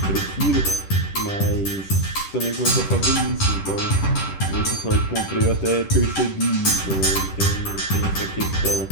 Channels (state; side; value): late; right; 10 ms